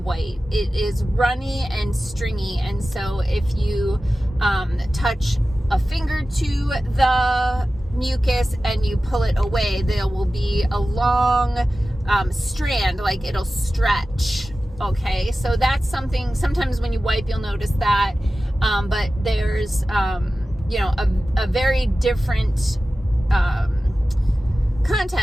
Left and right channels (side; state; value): both; normal; correlation 0.95